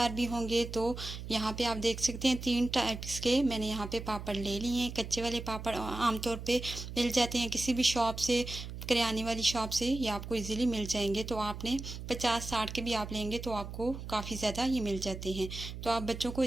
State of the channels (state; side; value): noise; right; hum, 9 dB below the sound